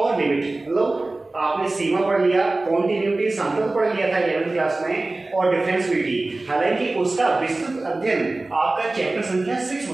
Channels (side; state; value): left; quieter; 3.0 dB